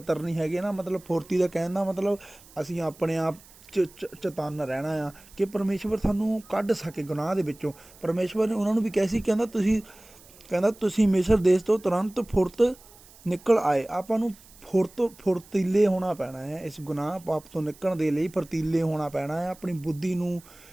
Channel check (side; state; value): right; noise; hiss, 24 dB below the sound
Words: ਨਹੀਂ ਹੈਗੇ ਨਾ, ਮਤਲਬ ਫੁਰਤੀ ਦਾ ਕਹਿਣ ਦਾ ਮਤਲਬ ਅਸੀਂ ਆਪਣੇ ਆਪ ਚਤੰਨ ਰਹਿਣਾ ਆ ਕਿ ਪਰਮੇਸ਼ਵਰ ਸਾਨੂੰ ਕੱਢ ਸਕੇ ਗੁਨਾਹ ਦੇ ਵਿੱਚੋਂ। ਪਰਮੇਸ਼ਵਰ ਨੇ ਉਹਨਾਂ ਨੂੰ ਵੀ ਕਿਹਾ ਸੀ, ਕਹਿੰਦਾ ਤੁਸੀਂ ਮਿਸਰ ਦੇਸ਼ ਤੋਂ ਤੁਰੰਤ ਫੁਰਤ ਨਿਕਲ ਆਏ। ਆਪਾਂ ਨੂੰ ਫੁਰਤੀਲੇ ਹੋਣਾ ਪੈਣਾ ਹੈ, ਇਸ ਗੁਨਾਹ ਪਾਪ ਤੋਂ ਨਿਕਲਣ ਦੇ ਲਈ ਫੁਰਤੀਲੇ ਹੋਣਾ ਪੈਣਾ ਹੈ। ਆਪਣੀ ਬੁੱਧੀ ਨੂੰ